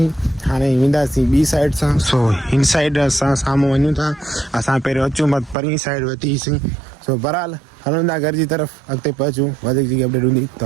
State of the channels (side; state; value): left; drops out; at 5.6 s